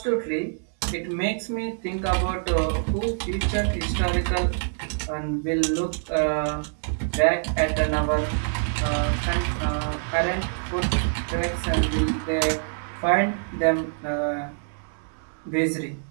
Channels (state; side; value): silent; left; 61 dB below the other